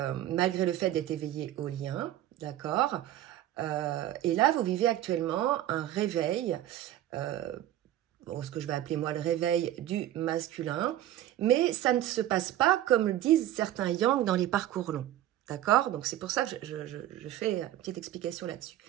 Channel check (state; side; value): quieter; left; 13.1 dB